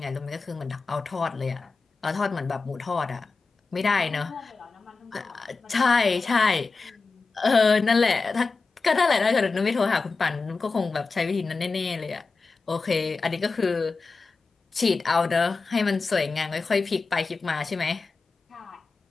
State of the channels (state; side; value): quieter; right; 4.2 dB